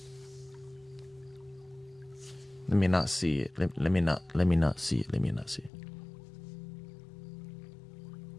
Let me not see it. Let me not see it. Let me not see it.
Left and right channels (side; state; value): right; drops out; at 5.7 s